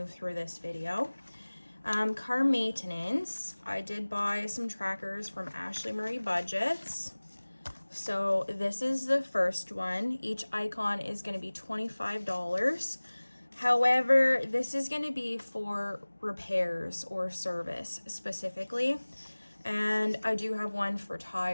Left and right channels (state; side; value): inverted; both; correlation -1.00